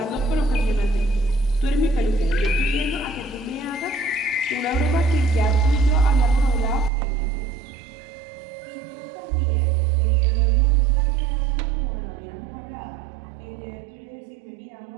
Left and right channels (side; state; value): left; drops out; at 6.9 s